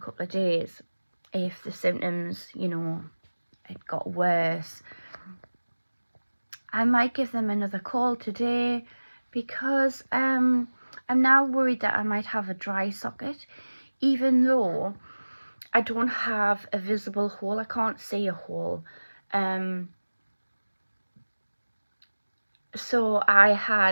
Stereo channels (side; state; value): both; inverted; correlation -1.00